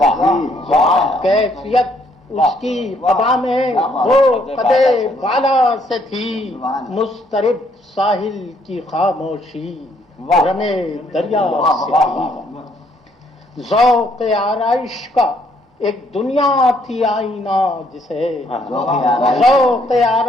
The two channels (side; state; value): both; normal; correlation 0.68